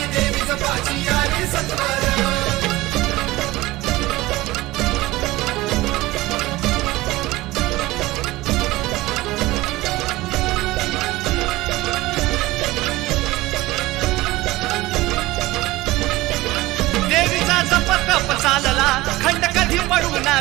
देवीचं पाची आली सत्वर। जप चालला खंड कधी पडू ना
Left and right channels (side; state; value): left; quieter; 18.9 dB